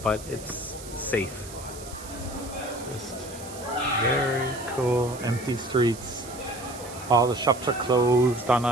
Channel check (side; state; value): right; noise; hiss, 15 dB below the sound